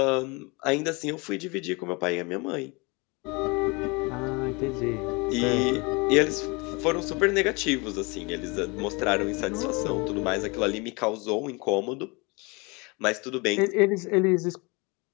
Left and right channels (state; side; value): quieter; right; 27.8 dB